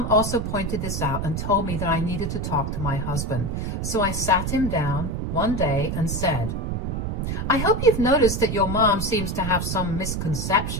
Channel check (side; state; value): right; noise; rumble, 2 dB below the sound